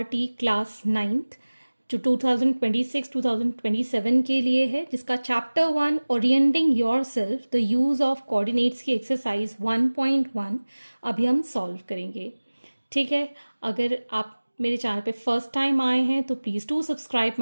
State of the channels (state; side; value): inverted; both; correlation -1.00